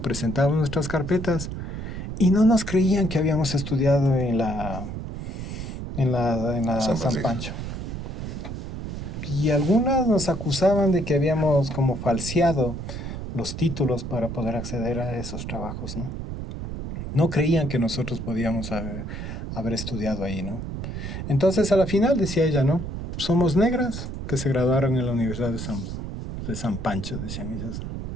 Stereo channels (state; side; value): noise; right; rumble, 6 dB below the sound